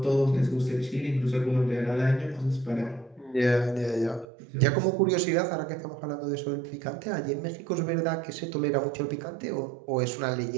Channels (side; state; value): left; drops out; at 4.2 s